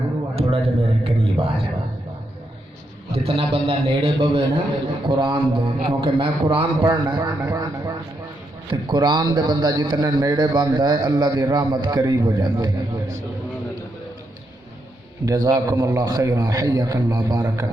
تھوڑا جا میرے قریب آ جائے۔ جتنا بندہ نیڑے بوے نا قرآن دے، کیونکہ میں قرآن پڑھنا ہے تو قرآن دے بندہ جتنا نیڑے بندہ ہے اللہ دی رحمت قریب ہو جاتی ہے۔ جزاکم اللہ خیرا، حیاک اللہ، بارک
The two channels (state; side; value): normal; both; correlation 0.80